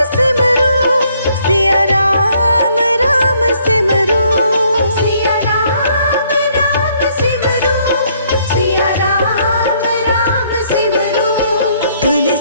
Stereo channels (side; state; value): both; inverted; correlation -0.67